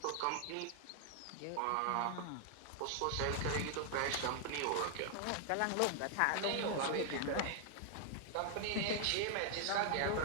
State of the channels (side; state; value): both; different; correlation 0.00